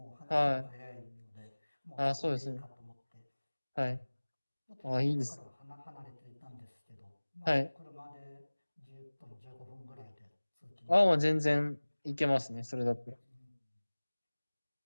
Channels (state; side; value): inverted; both; correlation -1.00